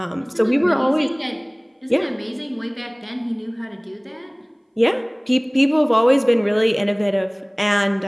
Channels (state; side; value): identical; both; correlation 1.00